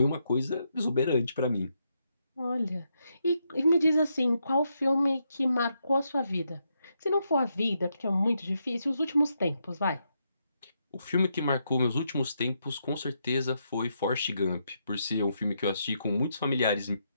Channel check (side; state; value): both; inverted; correlation -0.80